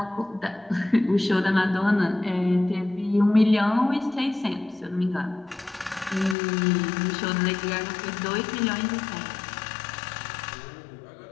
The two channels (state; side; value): drops out; right; at 6.4 s